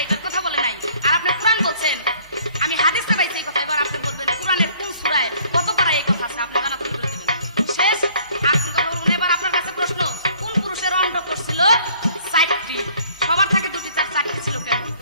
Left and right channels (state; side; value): inverted; both; correlation -0.58